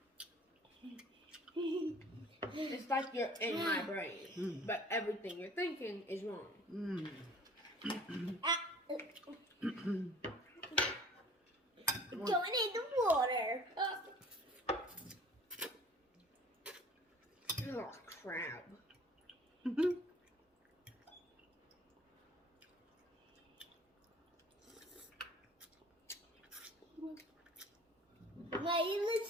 It's like you're in my brain, but everything you're thinking is wrong. Don't need the water. Oh, crap. Why you look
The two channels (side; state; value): both; normal; correlation 0.49